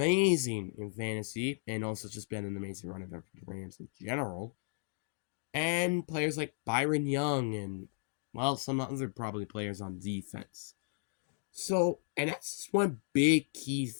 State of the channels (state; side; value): silent; right; digital silence